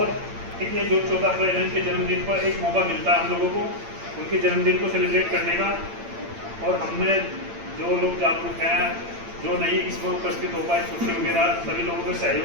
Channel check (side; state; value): left; late; 8.8 ms